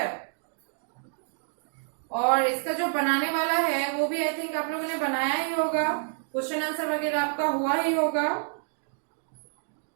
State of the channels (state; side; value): silent; left; 59 dB below the other